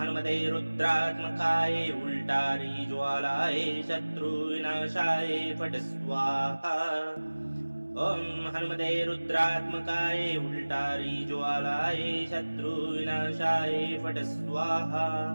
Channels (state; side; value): inverted; both; correlation -1.00